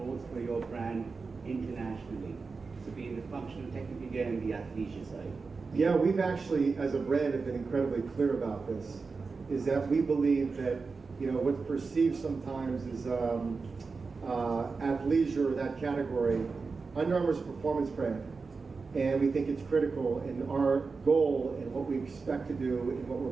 for your brand internationally? So being the functional technical gear and the athleisure side. Yeah, we've actually, as a brand, have been incredibly clear about this, is that we believe that, what's perceived sometimes as athleisure, that category, Under Armour is a performance brand. And we think it's critical in our goal and what we expect to do and what we're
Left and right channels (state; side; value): quieter; left; 4.5 dB